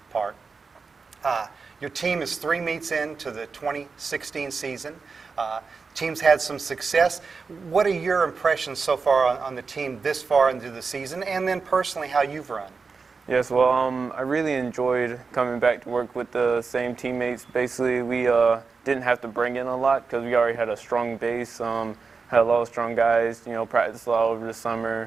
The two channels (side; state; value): left; quieter; 4.8 dB